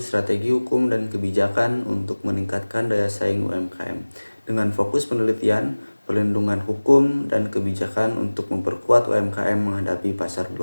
Strategi Hukum dan Kebijakan untuk Meningkatkan Daya Saing UMKM dengan fokus penelitian, perlindungan hukum dan kebijakan untuk memperkuat UMKM menghadapi pasar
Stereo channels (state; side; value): inverted; both; correlation -1.00